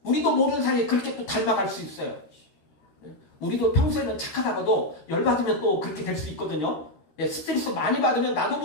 우리도 모르는 사이에 그렇게 또 닮아갈 수 있어요. 우리도 평소에는 착하다가도 열받으면 또 그렇게 될 수 있거든요. 스트레스 많이 받으면 나도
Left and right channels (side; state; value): right; late; 13 ms